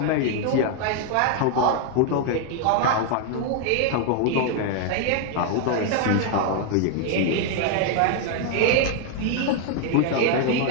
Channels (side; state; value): both; different; correlation 0.00